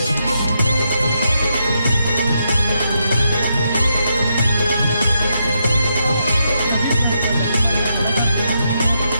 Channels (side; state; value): both; inverted; correlation -0.81